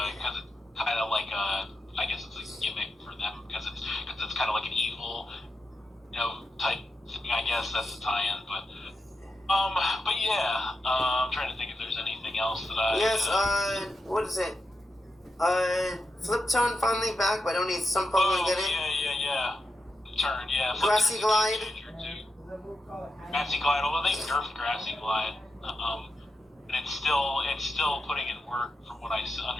kind of like I guess it's a gimmick for them because it's kind of like an evil, type thing. I guess that's the tie-in, but yeah, I'm trying to think if there's anything else that I. Yes. What is it? Flip Tone finally back, but only some Pokemon get it. Yeah. Turn, yeah. Grassy Glide. Grassy Glide, although they nerfed Grassy Glide, and it's still putting in work from what I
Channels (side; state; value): both; normal; correlation 0.88